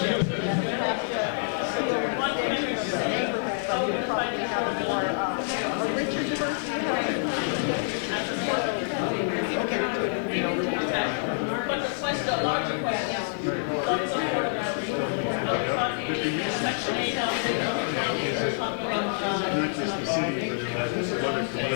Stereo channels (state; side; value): silent; right; digital silence